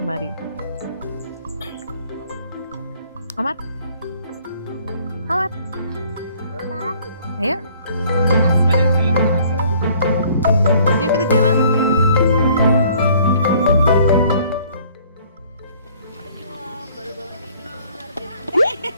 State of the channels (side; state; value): both; inverted; correlation -0.58